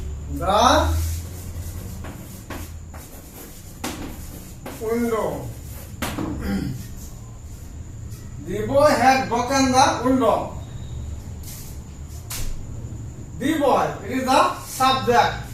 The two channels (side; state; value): both; identical; correlation 1.00